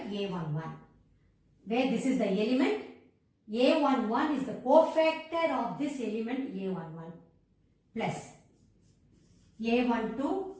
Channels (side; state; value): both; identical; correlation 1.00